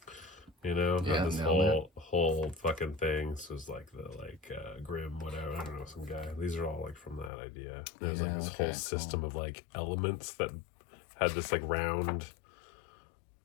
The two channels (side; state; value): right; drops out; at 7.3 s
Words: You know, yeah, this whole fucking thing. So it's like the Grim, whatever. I don't know, some guy. These are all like from that idea. There's like this whole system of like elements that had this like round.